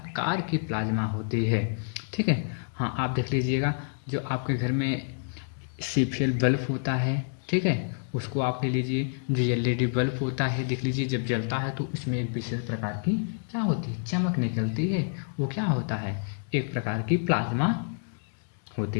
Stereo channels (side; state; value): right; silent; digital silence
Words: की प्लाज्मा होती है। ठीक है, हाँ, आप देख लीजिएगा, जो आपके घर में CPL बल्ब होता है, ठीक है, उसको आप ले लीजिए। जो LED बल्ब होता है, देख लीजिए, जब जलता है तो उसमें एक विशेष प्रकार की क्या होती है, चमक निकलती है। वो क्या होता है, एक प्रकार की प्लाज्मा